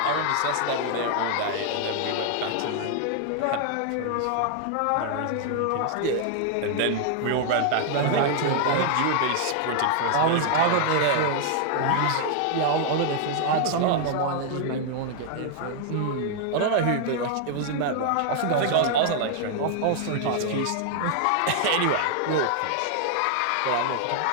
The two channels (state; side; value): different; both; correlation 0.00